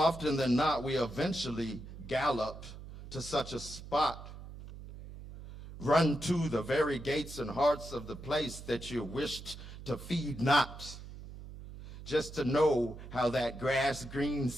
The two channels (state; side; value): noise; right; hum, 13 dB below the sound